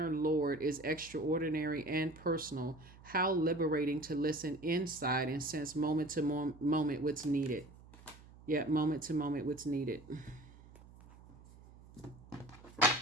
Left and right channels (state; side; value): noise; right; hum, 21 dB below the sound